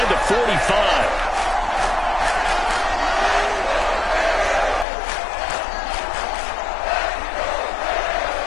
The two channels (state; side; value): drops out; right; at 4.9 s